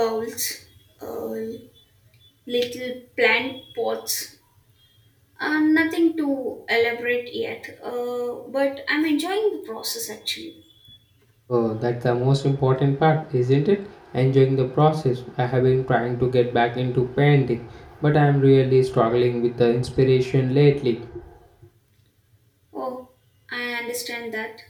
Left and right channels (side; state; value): both; identical; correlation 1.00